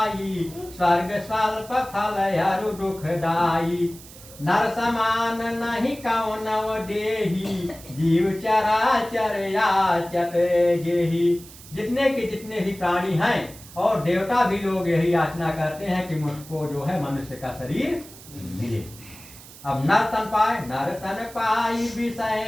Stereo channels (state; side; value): noise; right; hiss, 18 dB below the sound